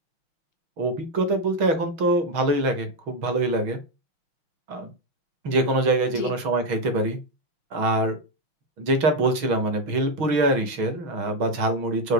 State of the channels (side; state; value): left; late; 6.3 ms